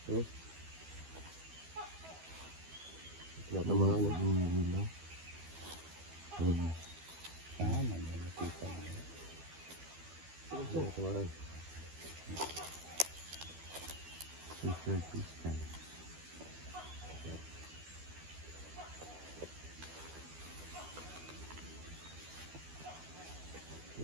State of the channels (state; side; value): late; left; 12 ms